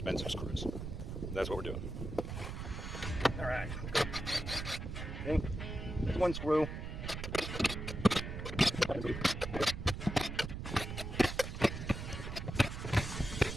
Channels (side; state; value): right; noise; rumble, 6 dB below the sound